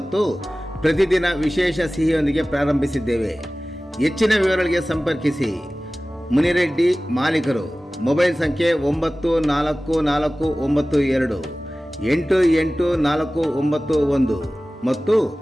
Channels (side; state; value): both; normal; correlation 0.97